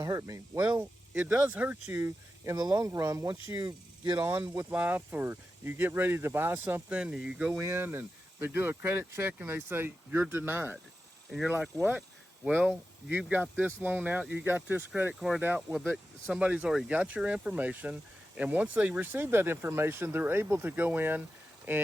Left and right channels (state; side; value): normal; both; correlation 0.91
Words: hurt me. Well, it does hurt you in the long run. Once you get on with life, or you get ready to buy something, and you go in and they do a credit check and they say you're denied, and you're like, what? Well, you've got this loan out, you got this credit card out. Well, somebody's already got your information, and once they receive that information, they're able to go in